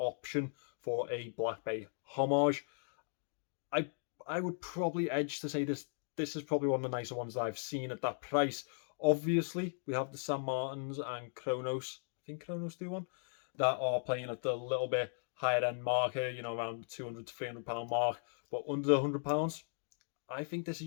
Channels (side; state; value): right; silent; digital silence